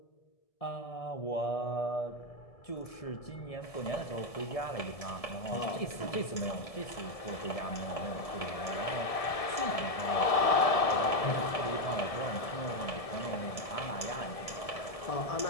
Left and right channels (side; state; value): right; late; 1.7 ms